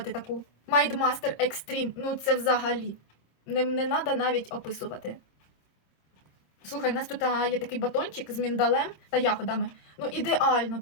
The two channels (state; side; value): late; right; 26 ms